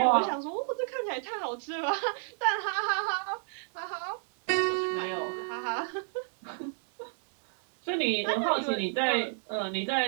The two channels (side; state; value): left; silent; digital silence